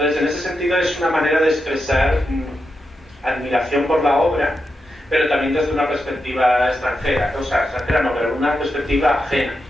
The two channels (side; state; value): both; normal; correlation 0.87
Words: en ese sentido es una manera de expresar admiración por la obra, pero también desde una perspectiva extranjera, o sea, extranjera no, pero una perspectiva ajena